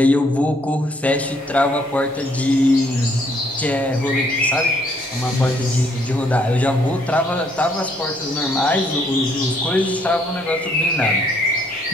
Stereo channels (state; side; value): normal; both; correlation 0.67